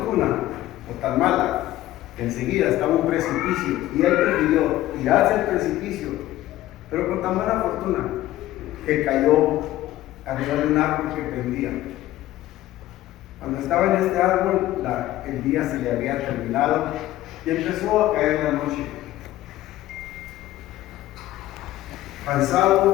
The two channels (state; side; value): quieter; right; 15.0 dB